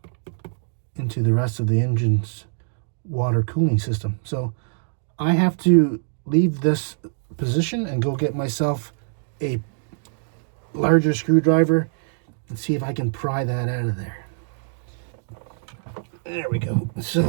the rest of the engine's water cooling system. So I have to leave this position and go get myself a larger screwdriver and see if I can pry that out of there. There we go.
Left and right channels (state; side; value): silent; left; digital silence